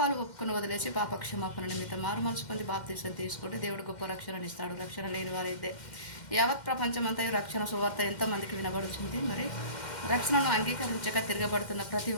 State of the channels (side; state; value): right; late; 2.1 ms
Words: ఒప్పుకొని వదిలేసి పాప క్షమాపణ నిమిత్తం మారు మనసు పొంది బాప్తీసం తీసుకుంటే దేవుడు గొప్ప రక్షణను ఇస్తాడు. రక్షణ లేని వారైతే యావత్ ప్రపంచమంతా రక్షణ సువార్త ఎంతమందికి వినబడుతుంది. మరి రక్షణను అంగీకరించక తిరగబడుతున్న ప్రతి